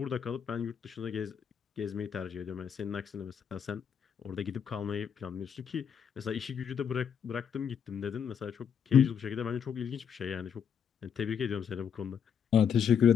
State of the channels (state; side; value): quieter; right; 7.8 dB